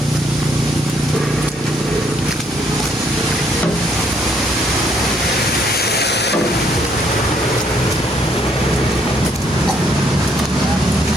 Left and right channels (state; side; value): normal; both; correlation 0.68